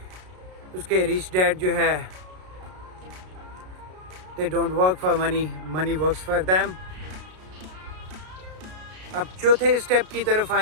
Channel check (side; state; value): left; late; 33 ms